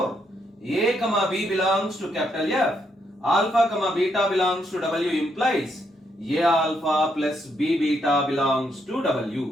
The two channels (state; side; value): normal; both; correlation 0.76